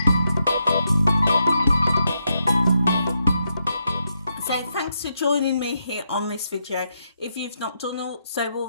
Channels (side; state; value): both; inverted; correlation -0.81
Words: So thanks for joining me here on this video. If you've not done so